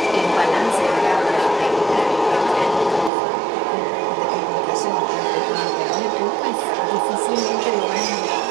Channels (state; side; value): drops out; left; at 3.1 s